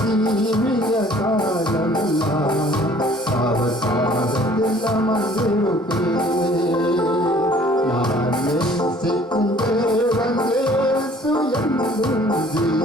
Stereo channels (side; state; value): both; normal; correlation 0.54